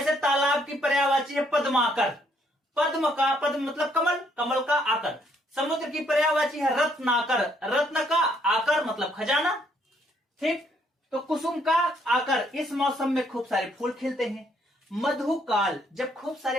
तालाब की पर्यायवाची है पद्माकर, पद्म का पद्म मतलब कमल, कमल का आकर। समुद्र की पर्यायवाची है रत्नाकर, रत्न का आकर मतलब खजाना। ठीक, तो कुसुम का आकर, इस मौसम में खूब सारे फूल खिलते हैं। मधुकाल, जब खूब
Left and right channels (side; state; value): both; normal; correlation 0.69